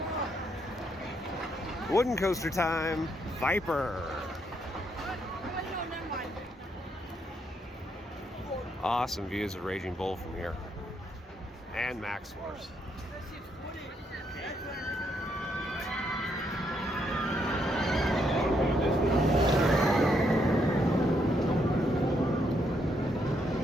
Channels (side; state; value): both; normal; correlation 0.75